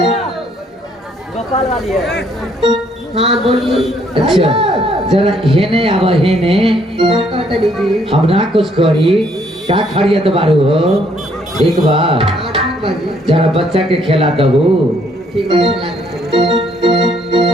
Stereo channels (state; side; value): normal; both; correlation 0.67